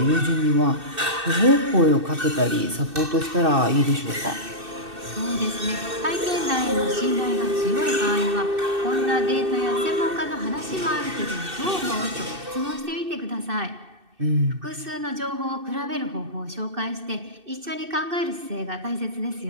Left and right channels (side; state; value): left; late; 2.6 ms